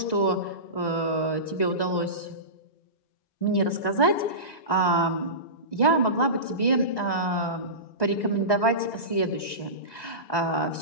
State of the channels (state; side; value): late; right; 1.9 ms